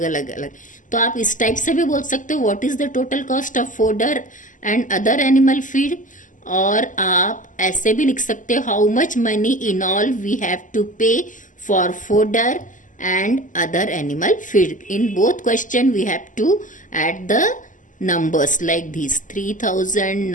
अलग. तो आप इस टाइप से भी बोल सकते हो, what is the total cost of fodder and other animal feed. और आप ऐसे भी लिख सकते हो, how much money in all we have to pay for fodder and other animal feed. In both question we have to add the numbers like these:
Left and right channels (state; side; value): late; right; 0.37 ms